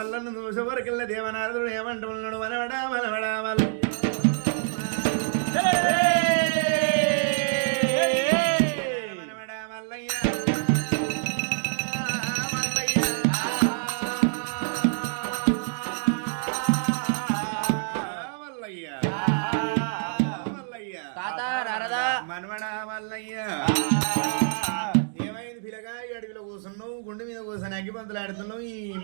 చూసే వరకెళ్ళ దేవనారదుడు ఏమంటున్నాడు మనవడా మనవడా మనవడా మల్లయ్య ఏమైంది పిల్లగా అడవిలో కూర్చున్నావు గుండె మీద కూర్చొని అగ్గిపంతులు ఆడుతున్నావు ఈ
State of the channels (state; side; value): silent; left; digital silence